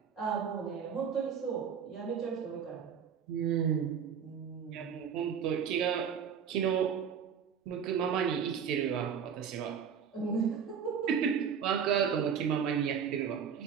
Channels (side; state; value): left; quieter; 7.4 dB